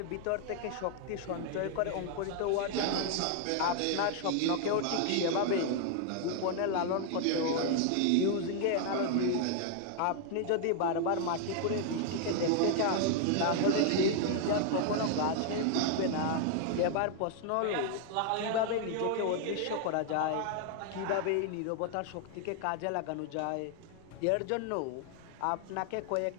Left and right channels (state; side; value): different; both; correlation 0.00